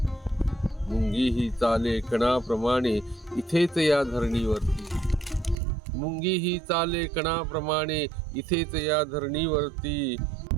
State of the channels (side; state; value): left; drops out; at 5.6 s